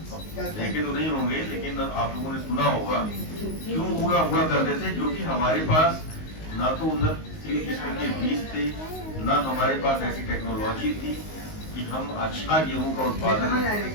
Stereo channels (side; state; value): right; late; 19 ms